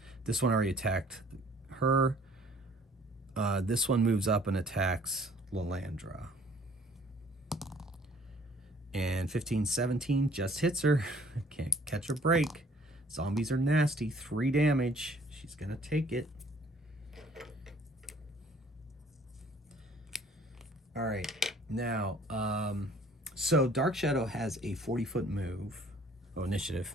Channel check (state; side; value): normal; both; correlation 0.56